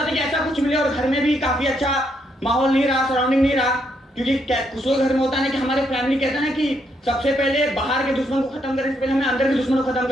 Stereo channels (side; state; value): both; normal; correlation 0.76